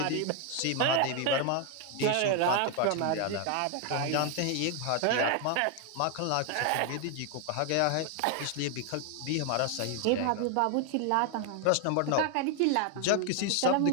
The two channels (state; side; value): different; both; correlation 0.00